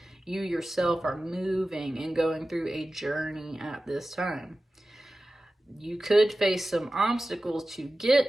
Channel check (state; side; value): normal; both; correlation 0.95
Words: You yourself are moving and going through a journey at this time. You could face some obstacles to